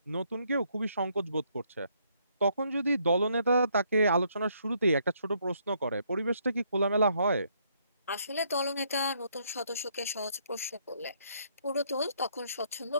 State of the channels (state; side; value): inverted; both; correlation -0.70